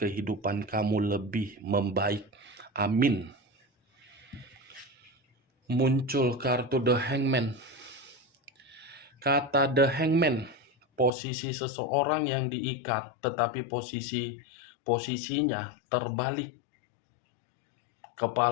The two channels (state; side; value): drops out; right; at 11.1 s